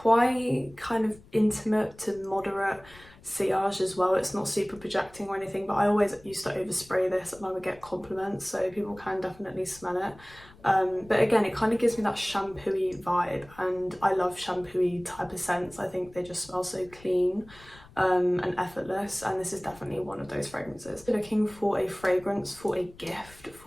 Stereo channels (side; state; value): left; noise; rumble, 23 dB below the sound